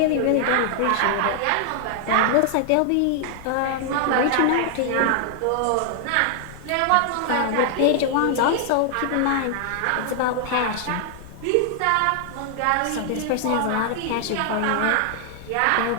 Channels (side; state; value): both; different; correlation 0.00